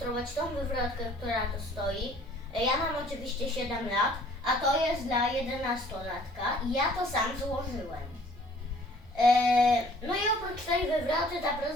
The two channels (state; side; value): normal; both; correlation 0.55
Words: tą wywrotkę, która tu stoi. Ja mam oczywiście 7 lat, a to jest dla 11-latka i ja to sam złożyłem. No i oprócz tej wywroty